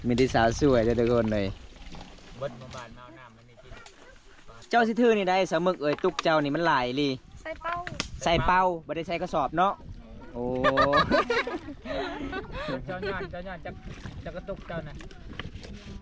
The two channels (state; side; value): identical; both; correlation 1.00